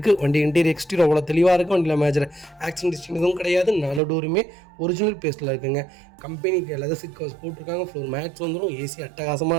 வண்டி இன்டீரியர் எக்ஸ்டீரியர் அவ்வளோ தெளிவாக இருக்குது. வண்டியில் மேஜர் ஆக்சிடென்ட் ஹிஸ்ட்ரி எதுவும் கிடையாது. 4 டோருமே ஒரிஜினல் பேஸ்ட்டில் இருக்குங்க. கம்பெனிக்கு லெதர் சீட் கவர்ஸ் போட்டிருக்காங்க. ஃப்ளோர் மேட்ஸ் வந்துடும். ஏசி அட்டகாசமாக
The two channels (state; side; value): drops out; left; at 4.0 s